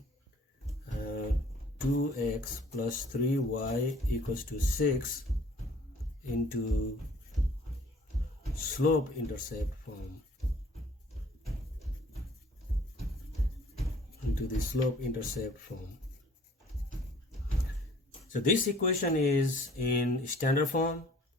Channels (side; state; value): both; normal; correlation 0.55